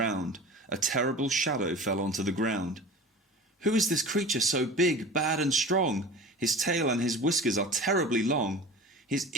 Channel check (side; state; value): both; normal; correlation 0.37